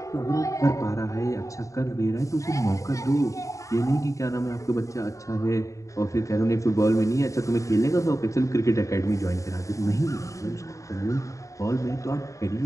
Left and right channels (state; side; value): late; right; 0.16 ms